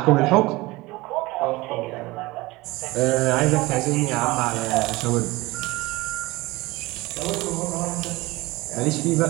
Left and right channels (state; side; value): quieter; left; 21.2 dB